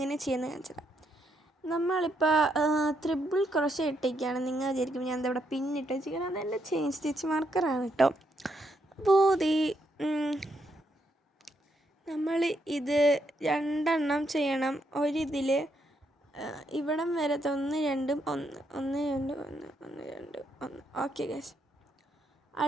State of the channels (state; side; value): normal; both; correlation 0.77